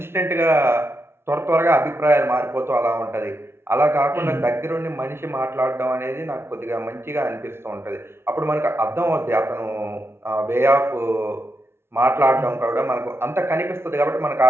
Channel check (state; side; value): late; left; 0.12 ms